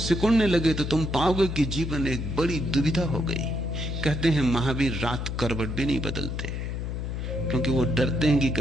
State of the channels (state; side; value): noise; left; hum, 4 dB below the sound